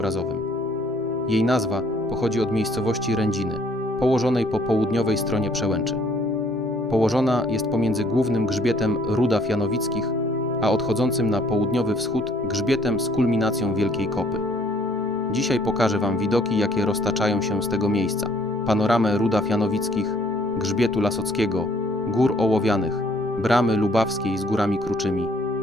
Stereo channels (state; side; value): normal; both; correlation 0.61